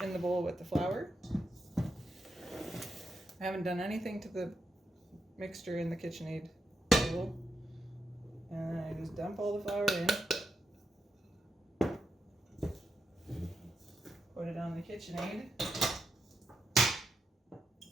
in the bowl with the flour. I haven't done anything to the mixture in the KitchenAid bowl. And I just dump all the flour in. Put it on the KitchenAid.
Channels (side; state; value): both; normal; correlation 0.84